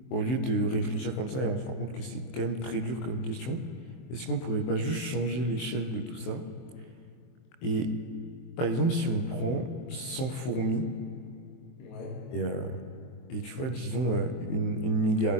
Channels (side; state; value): right; late; 23 ms